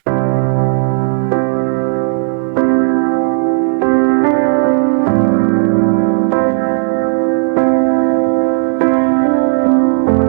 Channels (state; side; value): silent; left; 69 dB below the other